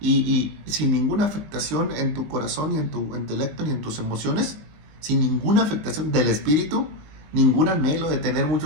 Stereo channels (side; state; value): left; late; 19 ms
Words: sin ninguna afectación en tu corazón, ni en tu intelecto, ni en tus emociones. Sin ninguna afectación del espíritu. Ningún anhelo de tener